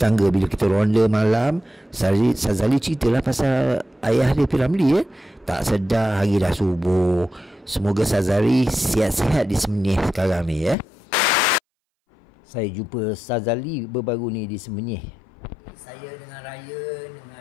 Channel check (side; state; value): right; drops out; at 10.8 s